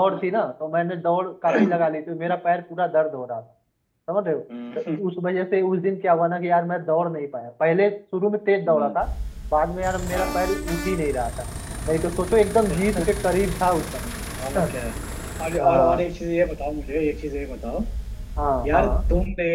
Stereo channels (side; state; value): both; identical; correlation 1.00